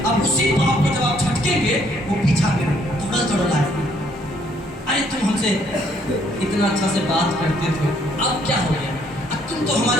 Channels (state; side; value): normal; both; correlation 0.67